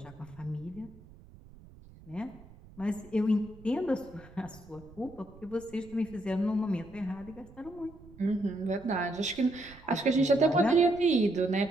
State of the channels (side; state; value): right; noise; rumble, 21 dB below the sound